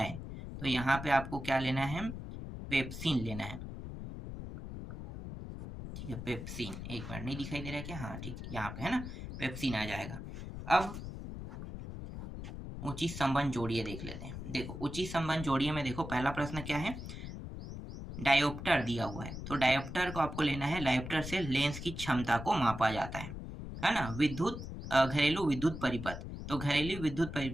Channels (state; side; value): noise; left; rumble, 8 dB below the sound